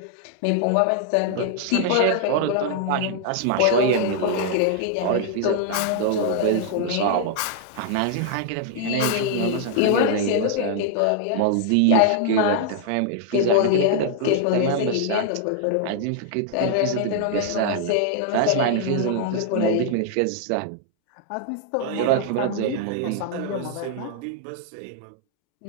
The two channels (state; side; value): different; both; correlation -0.01